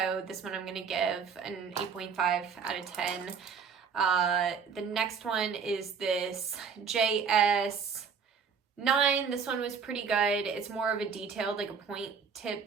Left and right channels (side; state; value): left; quieter; 6.3 dB